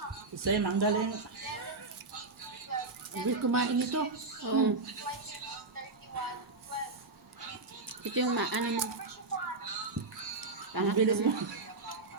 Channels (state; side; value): quieter; left; 3.5 dB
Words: Isa yung ang galing. Sabi kumain ito. Oo. Ito yung ano mo. Tama Bilis mo.